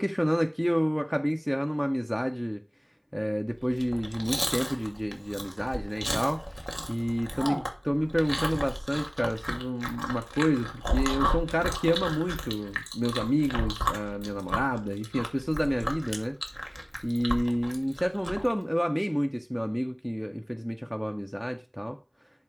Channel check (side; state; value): both; identical; correlation 1.00